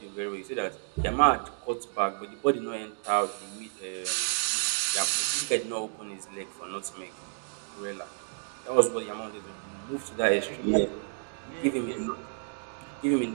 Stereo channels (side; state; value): left; silent; digital silence